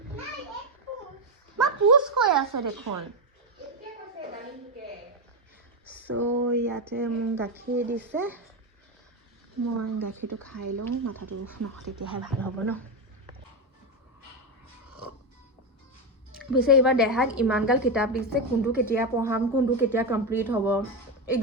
মা পুচ কৈ আছে দেখোন চ' ইয়াতে মোক গাখীৰ দিছে মই গাখীৰটো খাই লওঁ মাথাটো নহয় তেতিয়াহে ভাল হ'ব ন পিছে এইবাৰ দেহাক ইমানগাল কিতাপ দিছে কোনটো কেতিয়া পঢ়াম কোনটো কেতিয়া কমপ্লিট হ'ব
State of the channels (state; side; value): normal; both; correlation 0.10